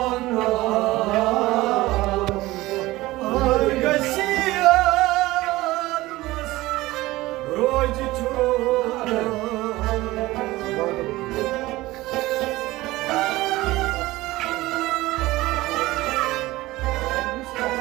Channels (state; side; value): quieter; left; 18.6 dB